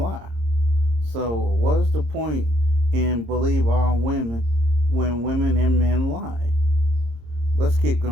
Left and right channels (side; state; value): left; late; 26 ms